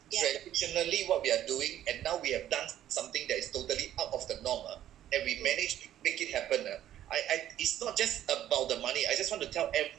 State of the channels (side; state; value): left; quieter; 11.9 dB